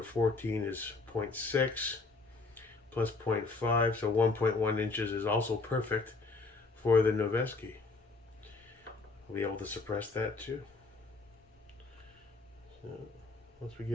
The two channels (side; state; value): right; quieter; 3.8 dB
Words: 14 is 0.6 plus 0.5, so 1.1 inches is also perfect for the Noveski. We'll be able to suppress that too. So once we